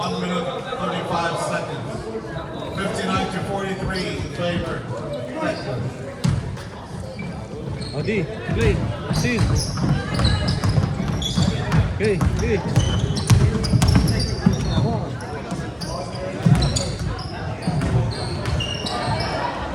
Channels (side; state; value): both; identical; correlation 1.00